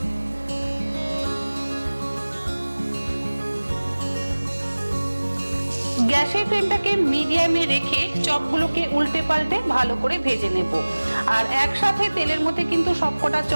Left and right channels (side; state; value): both; inverted; correlation -1.00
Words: গ্যাসের ফ্লেমটাকে মিডিয়ামে রেখে চপগুলোকে উল্টে পাল্টে ভালো করে ভেজে নেব। আর একসাথে তেলের মধ্যে কিন্তু সবকটা